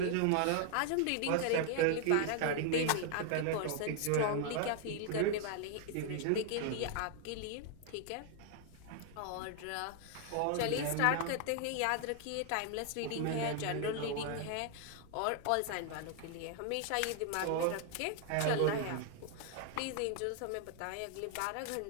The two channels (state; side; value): different; both; correlation 0.00